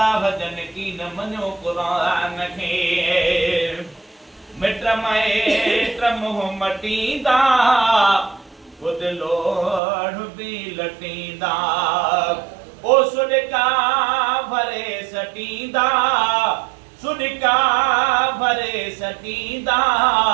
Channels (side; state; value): left; drops out; at 9.8 s